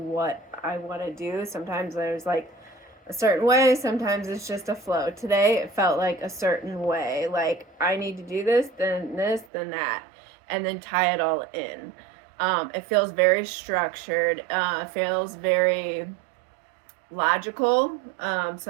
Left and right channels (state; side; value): drops out; left; at 9.5 s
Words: I want to do. Sometimes there's like a certain way, sometimes it's just a flow. Today it felt like a certain way, like I need to do this, then that, and then tie it all in. It feels very structured, feels very logical.